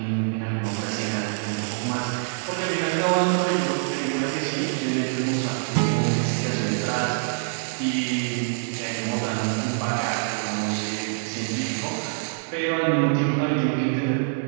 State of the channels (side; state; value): left; silent; digital silence